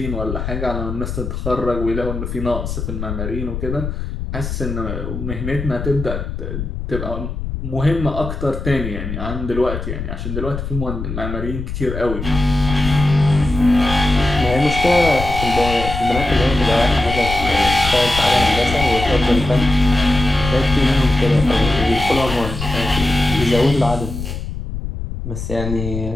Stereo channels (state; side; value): noise; left; rumble, 6 dB below the sound